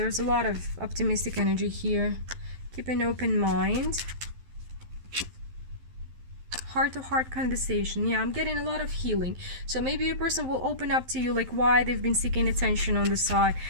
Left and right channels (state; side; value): late; left; 12 ms